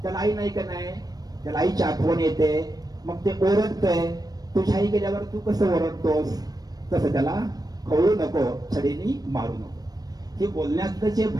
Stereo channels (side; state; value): left; late; 0.19 ms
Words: त्याला आई नाही का नाही, त्याला आईची आठवण येते, मग ते ओरडतंय. तुझ्या आई गेल्यावर तू कसं ओरडतोस, तसं त्याला खवळू नको, छडीनी मारू नको. हे बोलण्यातलं जे